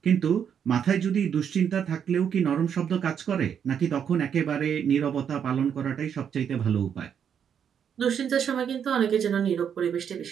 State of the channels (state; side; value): quieter; left; 8.1 dB